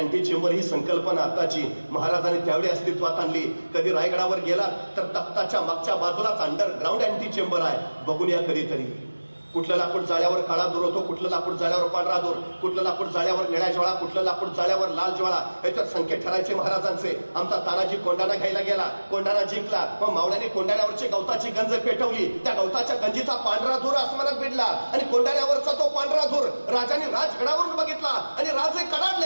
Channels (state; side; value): inverted; both; correlation -1.00